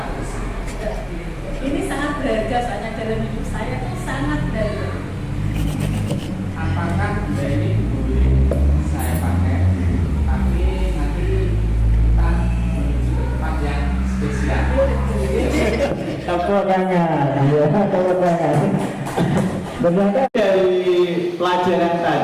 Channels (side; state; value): both; identical; correlation 1.00